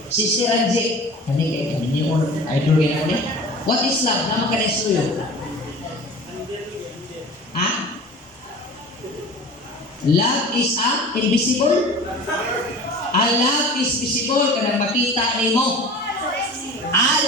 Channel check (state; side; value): normal; both; correlation 0.39